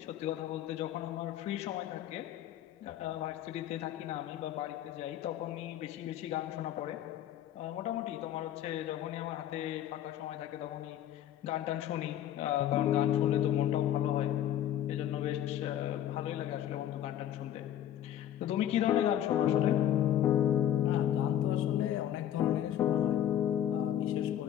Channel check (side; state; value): right; quieter; 11.1 dB